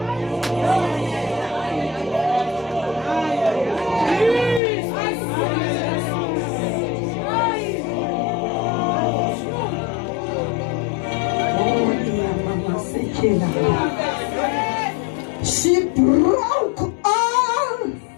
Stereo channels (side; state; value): right; drops out; at 4.6 s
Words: She broke all